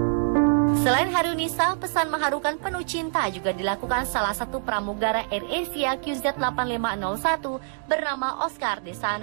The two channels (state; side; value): silent; left; digital silence